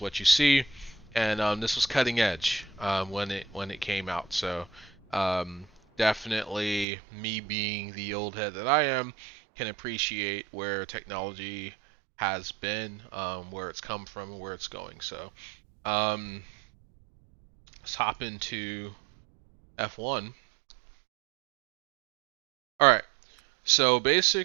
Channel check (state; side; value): drops out; left; at 6.9 s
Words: what you see, and this was cutting edge when it came out. So um, definitely, me being the old head that I am, can appreciate where technology has been, where it's come from, and where it's going. So um, let's hop into F1. All right. So